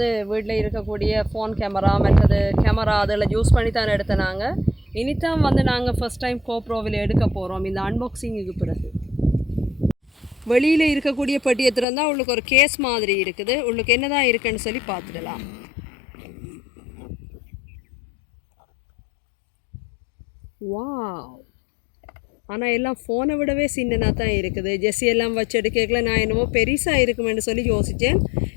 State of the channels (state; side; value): drops out; right; at 11.9 s